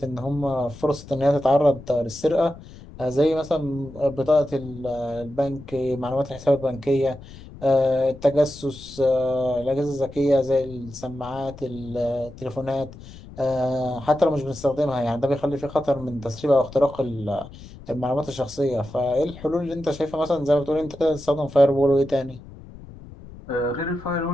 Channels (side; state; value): left; noise; rumble, 17 dB below the sound